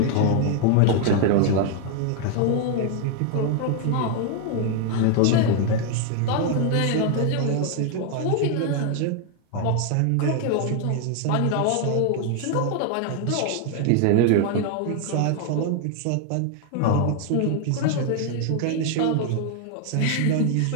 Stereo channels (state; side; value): different; both; correlation 0.00